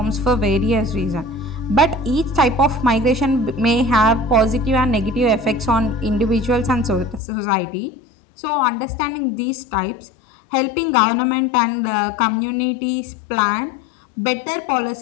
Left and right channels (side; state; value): right; drops out; at 7.2 s